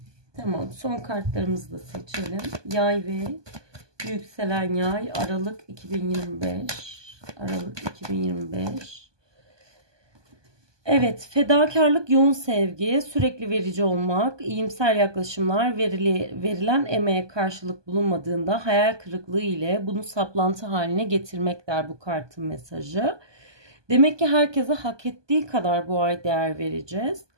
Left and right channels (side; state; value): left; late; 1.2 ms